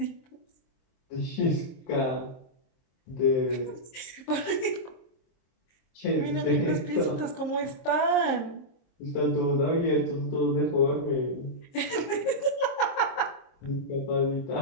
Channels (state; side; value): late; right; 23 ms